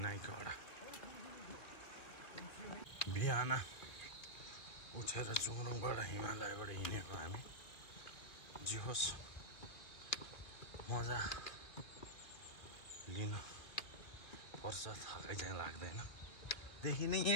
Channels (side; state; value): right; late; 2.5 ms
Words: बिहान उठेर चुङरुङबाट हिमालयबाट हिँडेको हामी जे होस् मजा लिनु पर्छ थकाइ चाहिँ लाग्दैन देखिने